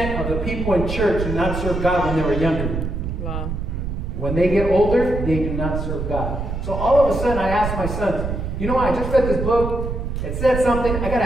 of the people in church do not serve God when they were younger. Wow. When they get older, they do not serve God. So all of a sudden I asked my sons, you know what, I just read this book. It said something. I got to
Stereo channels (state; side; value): noise; right; rumble, 4 dB below the sound